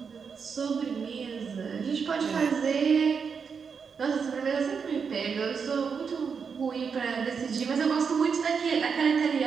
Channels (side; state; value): left; quieter; 6.0 dB